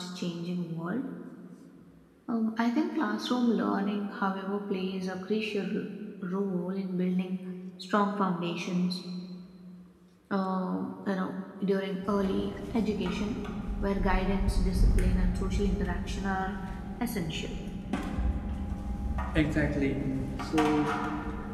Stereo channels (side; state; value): both; identical; correlation 1.00